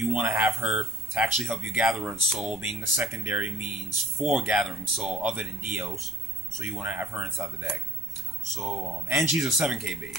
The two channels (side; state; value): right; noise; rumble, 19 dB below the sound